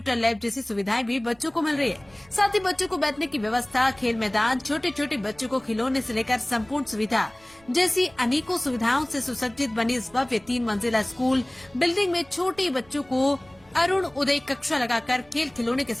लैब जैसी सुविधाएं भी बच्चों को मिल रही है। साथ ही बच्चों को बैठने की व्यवस्था, खेल मैदान, छोटे छोटे बच्चों को खिलौने से लेकर संपूर्ण सुविधा जैसी अनेकों सुविधाओं से सुसज्जित बनी इस भव्य 3 मंजिला स्कूल बिल्डिंग में छोटे बच्चों को अरुण उदय कक्षा लगाकर खेल खिलौने के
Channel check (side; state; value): right; noise; rumble, 28 dB below the sound